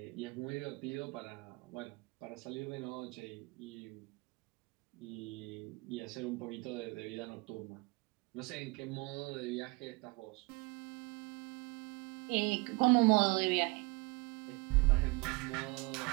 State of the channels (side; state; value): left; quieter; 26.8 dB